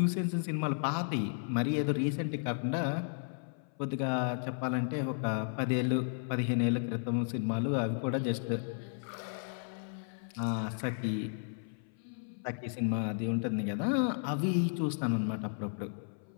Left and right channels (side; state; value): right; silent; 55 dB below the other